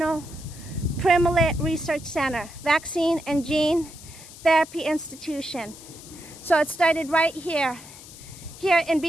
Primate Research Center, Vaccine and Gene Therapy Institution. So it started right here in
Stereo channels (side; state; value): left; noise; hiss, 17 dB below the sound